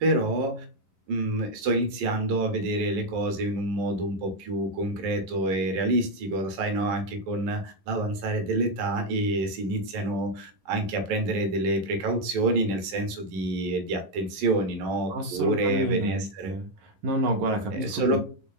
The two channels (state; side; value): late; left; 11 ms